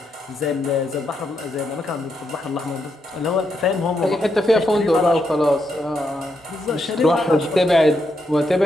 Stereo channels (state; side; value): normal; both; correlation 0.81